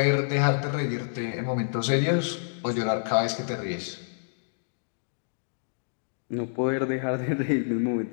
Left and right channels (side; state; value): right; silent; digital silence